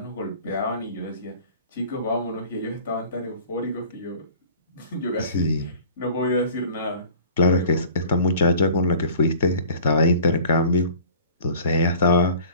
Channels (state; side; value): inverted; both; correlation -0.45